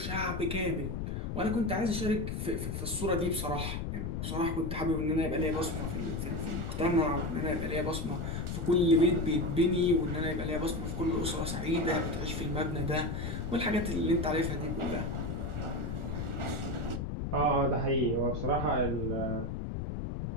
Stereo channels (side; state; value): left; noise; rumble, 3 dB below the sound